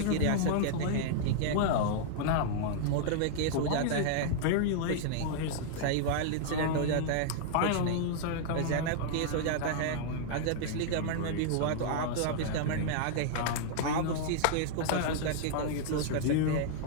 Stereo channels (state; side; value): different; both; correlation -0.01